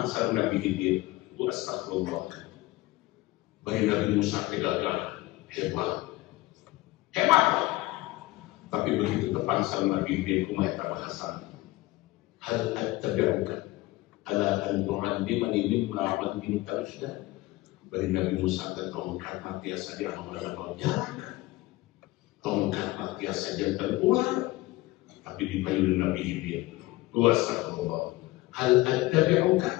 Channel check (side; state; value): right; quieter; 19.3 dB